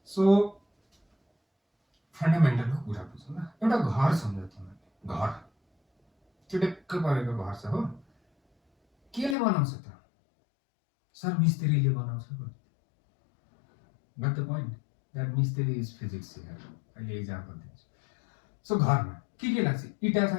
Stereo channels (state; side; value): drops out; right; at 9.3 s